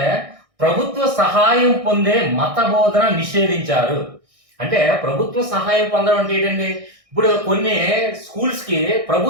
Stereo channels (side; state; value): left; late; 1.6 ms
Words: ప్రభుత్వ సహాయం పొందే మత బోధన నిషేధించారు. అంటే ప్రభుత్వ సహాయం పొందడం అంటే ఏంటండి, ఇప్పుడు కొన్ని స్కూల్స్ కి